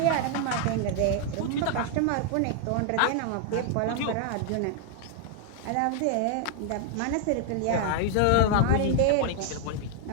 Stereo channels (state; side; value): different; both; correlation 0.00